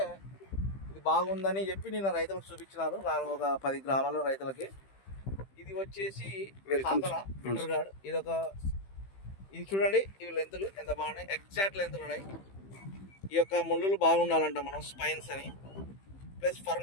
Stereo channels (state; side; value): late; right; 15 ms